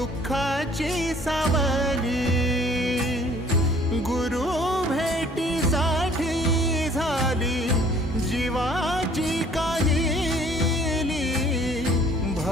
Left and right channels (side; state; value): both; normal; correlation 0.56